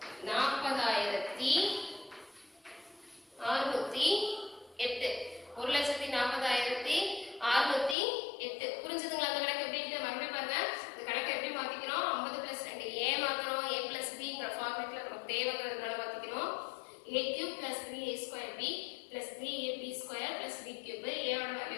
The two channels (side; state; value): right; drops out; at 8.0 s